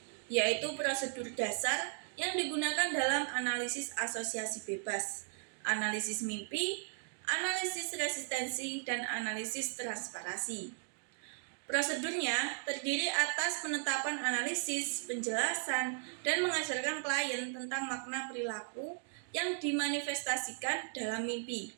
yaitu prosedur dasar yang digunakan dalam analisis asosiasi bebas, analisis mimpi, analisis resistensi, dan analisis transparasi. Prosedurnya terdiri atas penetapan analisis, penjelasan, dan mengajarkan klien tentang makna perilaku yang dimanifestasikan dalam mimpi,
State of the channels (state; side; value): silent; left; 53 dB below the other